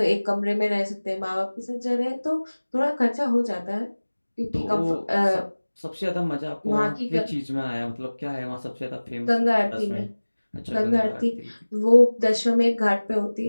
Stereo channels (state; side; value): inverted; both; correlation -1.00